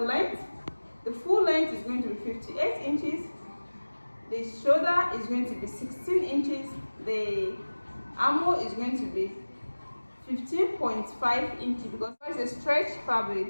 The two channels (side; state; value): both; inverted; correlation -1.00